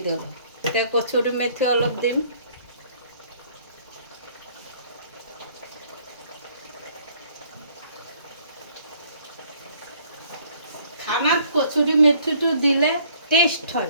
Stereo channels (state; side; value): inverted; both; correlation -0.60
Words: দিলোঁ এতিয়া কচুৰি মেথি অলপ দিম খানাত কচুৰি মেথিটো দিলে টেষ্ট